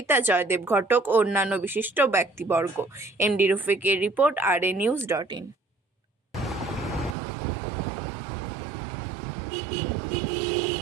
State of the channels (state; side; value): drops out; left; at 7.2 s